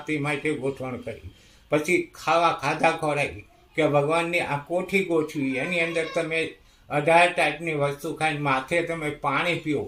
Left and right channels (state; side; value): identical; both; correlation 1.00